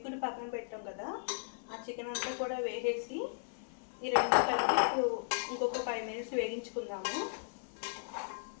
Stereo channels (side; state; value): right; silent; 54 dB below the other